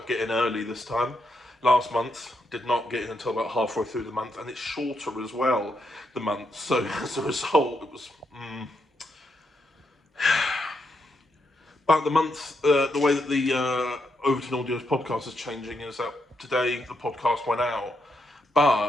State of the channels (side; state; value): both; normal; correlation 0.80